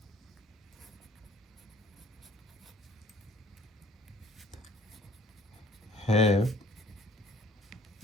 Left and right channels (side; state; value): both; normal; correlation 0.54